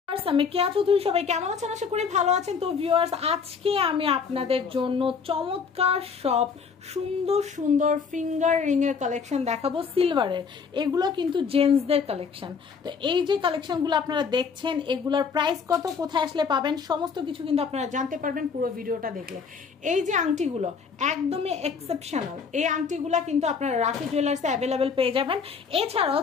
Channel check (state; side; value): quieter; right; 5.8 dB